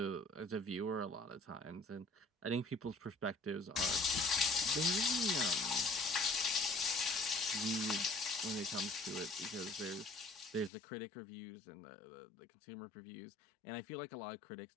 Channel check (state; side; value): drops out; right; at 10.7 s